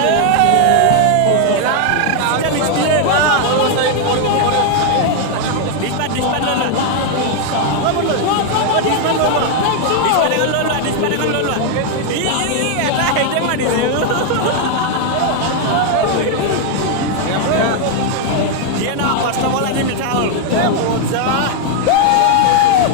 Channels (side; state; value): both; different; correlation 0.00